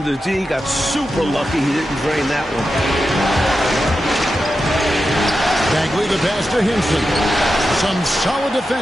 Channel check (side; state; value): both; normal; correlation 0.90